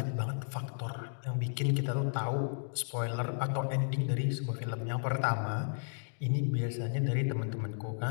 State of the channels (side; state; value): right; silent; digital silence